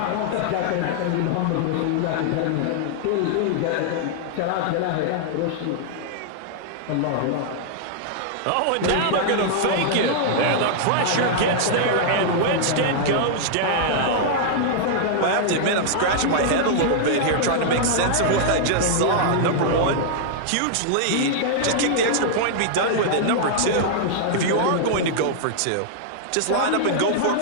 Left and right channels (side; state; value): both; different; correlation -0.01